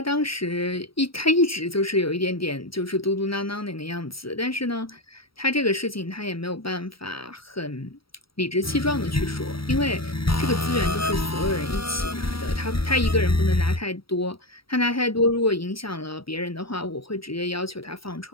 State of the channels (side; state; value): right; late; 0.75 ms